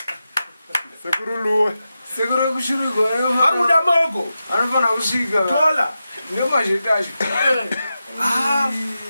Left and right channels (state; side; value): inverted; both; correlation -0.90